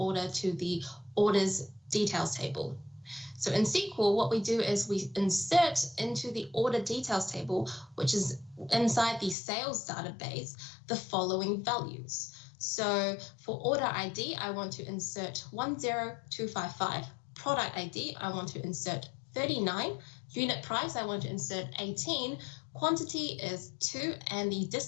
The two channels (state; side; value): drops out; right; at 9.3 s